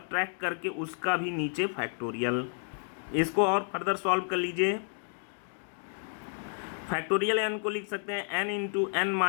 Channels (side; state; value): right; silent; 57 dB below the other